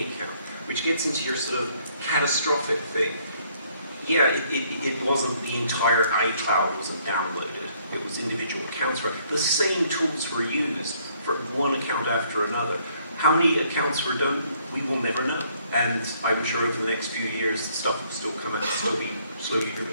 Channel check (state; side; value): inverted; both; correlation -0.65